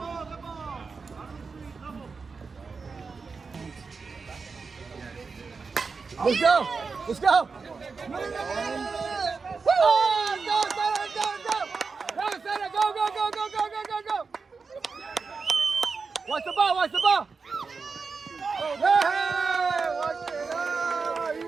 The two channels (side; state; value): left; quieter; 4.8 dB